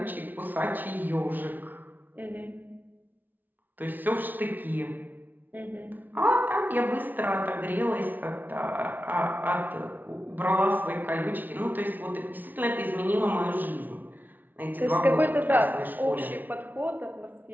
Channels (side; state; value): left; late; 0.084 ms